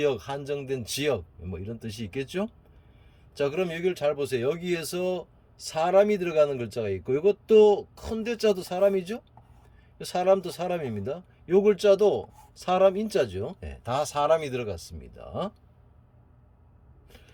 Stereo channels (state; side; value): identical; both; correlation 1.00